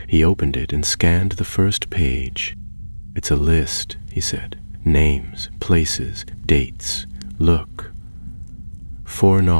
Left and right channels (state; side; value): inverted; both; correlation -1.00